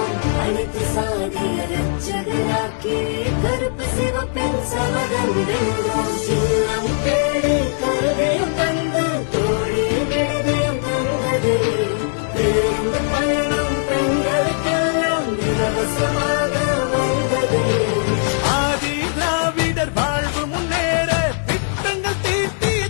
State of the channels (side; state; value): right; silent; digital silence